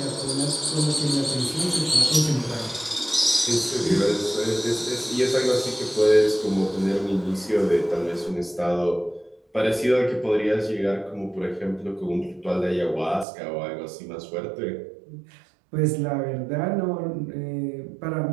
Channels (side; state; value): left; drops out; at 13.2 s